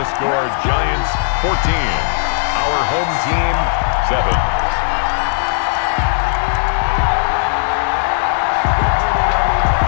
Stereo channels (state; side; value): silent; right; 69 dB below the other